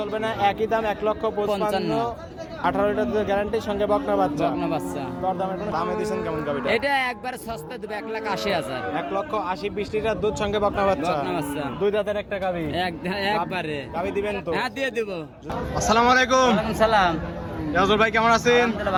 না, একই দাম 1,55,000, 18 লিটার দুধের গ্যারান্টি, সঙ্গে বকনা বাচ্চা। দর দামের কোনো দামে দিবেন কেমন গাবিটা? এটা একবার সস্তা দেবে 1,80,000। 1,80,000 20 লিটার দুধ, সঙ্গে বকনা বাচ্চা। দুই দাঁতের একটা গাবি একবারে। গাবি দিবেন তো? হ্যাঁ দিয়ে দেব। আসসালামু আলাইকুম। ওয়ালাইকুম সালাম। ইয়াজুল ভাই কেমন আছেন? আলহামদুলিল্লাহ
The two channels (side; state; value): both; identical; correlation 1.00